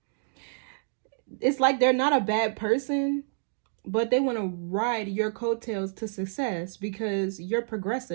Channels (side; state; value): left; silent; digital silence